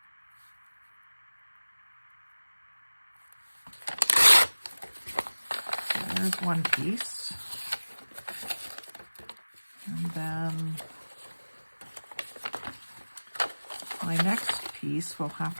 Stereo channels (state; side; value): inverted; both; correlation -1.00